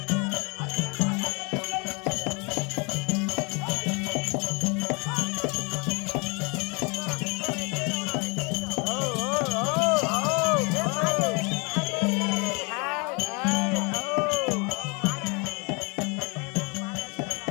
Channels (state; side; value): quieter; right; 30.6 dB